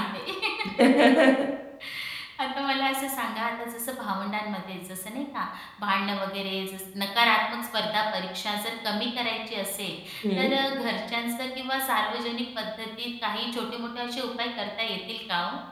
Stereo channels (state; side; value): identical; both; correlation 1.00